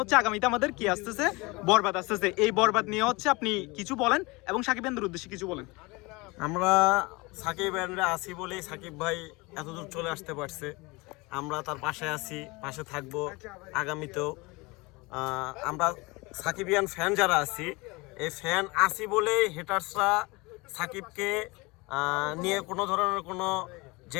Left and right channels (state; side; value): quieter; right; 24.7 dB